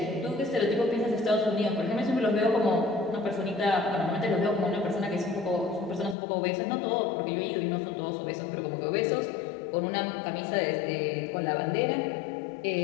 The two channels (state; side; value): drops out; right; at 6.2 s